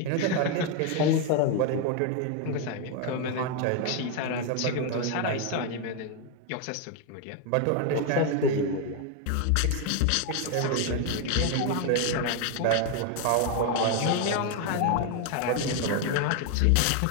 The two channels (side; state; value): both; different; correlation 0.01